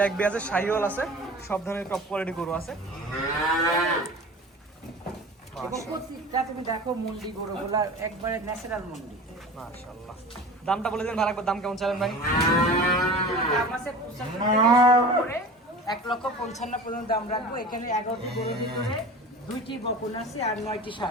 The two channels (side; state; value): both; normal; correlation 0.37